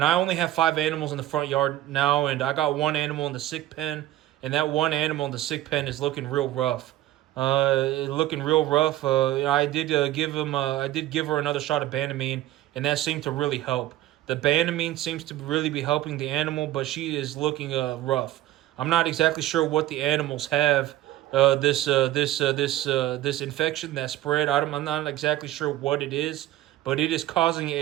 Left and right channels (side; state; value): left; quieter; 14.5 dB